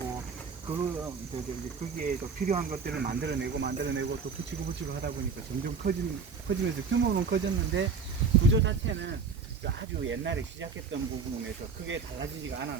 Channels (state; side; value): quieter; left; 5.5 dB